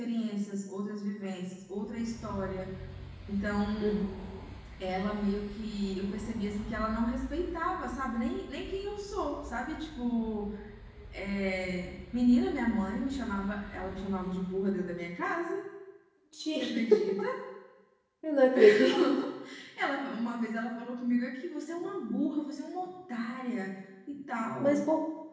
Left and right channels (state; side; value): identical; both; correlation 1.00